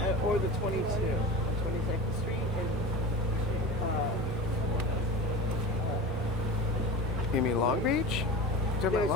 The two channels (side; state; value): both; normal; correlation 0.31